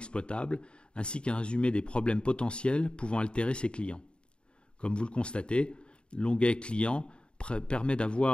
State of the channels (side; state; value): right; late; 0.053 ms